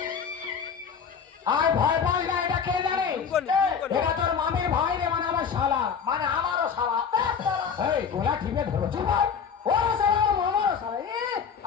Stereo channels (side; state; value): right; quieter; 6.6 dB